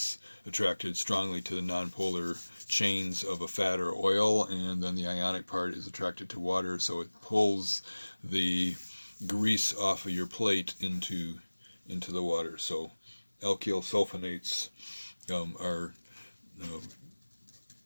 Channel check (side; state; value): both; inverted; correlation -1.00